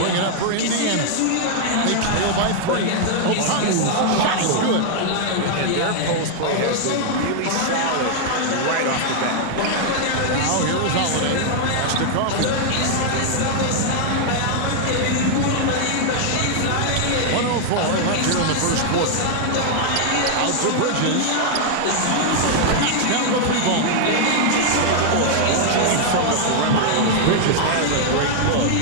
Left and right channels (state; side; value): different; both; correlation 0.00